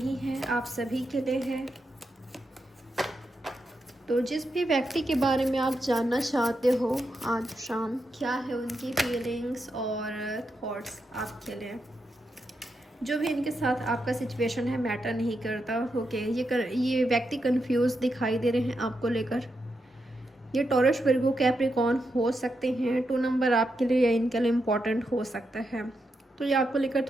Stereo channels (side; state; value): both; normal; correlation 0.85